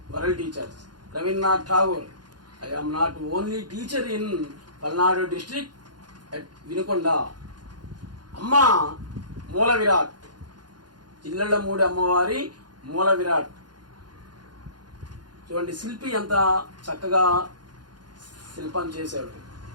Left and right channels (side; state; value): left; late; 0.70 ms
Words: World Teachers. Rabindranath Tagore. I am not only teacher in Palnadu district at Vinukonda. Amma Moola Virat. Jillallamudi అమ్మవారి మూల విరాట్. చూడండి శిల్పి ఎంత చక్కగా శిల్పం చేశాడు.